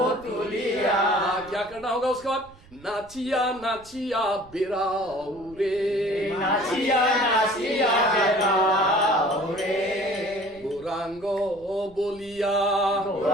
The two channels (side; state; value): right; noise; rumble, 24 dB below the sound